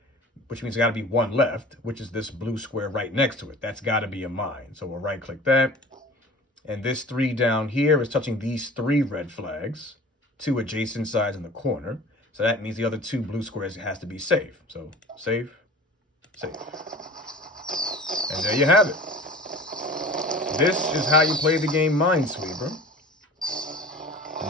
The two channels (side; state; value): both; normal; correlation 0.41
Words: which means there's got to be 1 left, which is this blue square right next to it. That's got to be a mine, so we'll right-click that. And this 3 down here is touching these 3 red flags, 2 adjacent sides in the corner. So that means the other 2 blue squares has to be safe. So safe, safe. And there you have it. This is how you play the game Minesweeper.